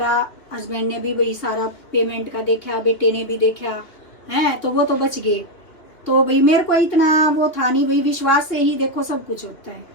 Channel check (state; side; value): late; right; 2.8 ms